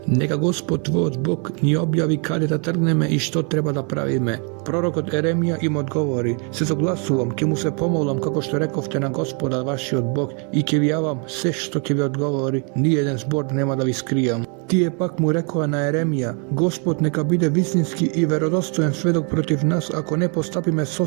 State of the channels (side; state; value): left; quieter; 37.7 dB